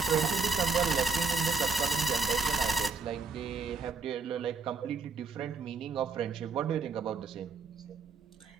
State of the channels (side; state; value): left; quieter; 4.6 dB